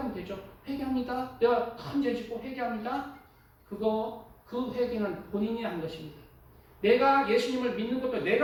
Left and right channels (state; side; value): identical; both; correlation 1.00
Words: 되죠. 회개합니다. 내가 큰 죄 짓고 회개합니다. 그 회개는 본인이 한 것입니다. 내가 예수님을 믿는 것도